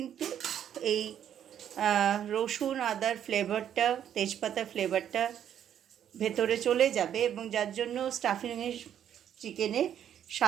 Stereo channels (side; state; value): left; quieter; 9.8 dB